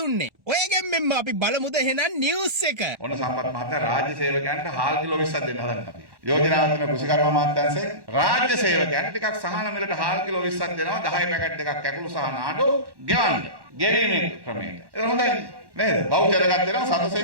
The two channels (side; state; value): left; late; 1.1 ms